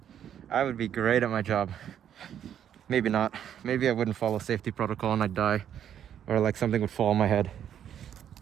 I would be great at my job. Maybe not. Maybe I wouldn't follow safety protocol and I'd die. Or like something would fall on my head.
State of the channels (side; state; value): left; quieter; 9.6 dB